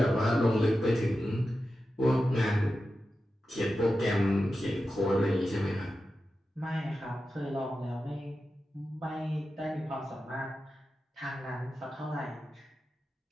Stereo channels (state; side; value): normal; both; correlation 0.92